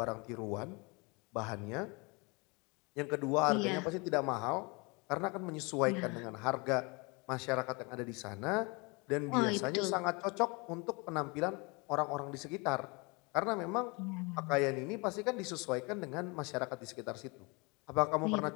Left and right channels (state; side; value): quieter; right; 28.8 dB